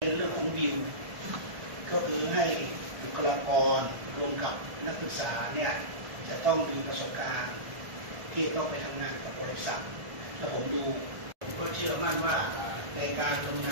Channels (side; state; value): left; late; 1.5 ms